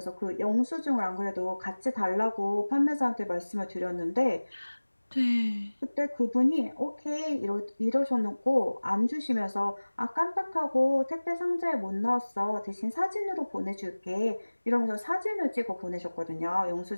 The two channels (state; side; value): inverted; both; correlation -1.00